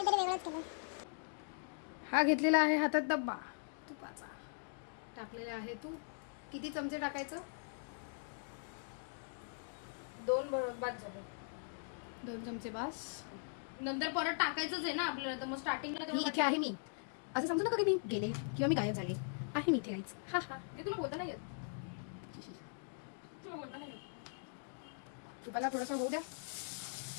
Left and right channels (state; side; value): silent; right; digital silence